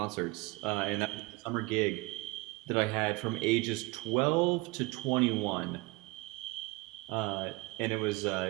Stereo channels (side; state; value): left; quieter; 23.8 dB